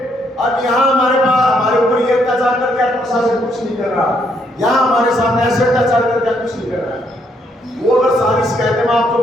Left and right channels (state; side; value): normal; both; correlation 0.72